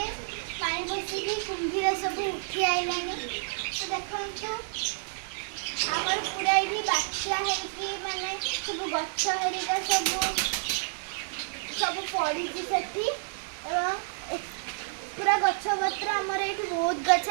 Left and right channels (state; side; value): silent; left; digital silence